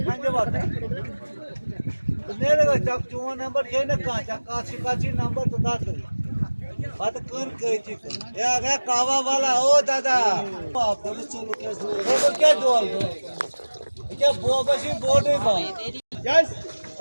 खांजे बात मेरे का चक चुवा नंबर ये ना का चक काची नंबर तो दात बात कर कही थी ये आ गया कावा वाला ओ दादा पुलिस चलो क्या डोल क्या बोबशी बोर्ड है बा यस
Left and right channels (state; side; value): inverted; both; correlation -1.00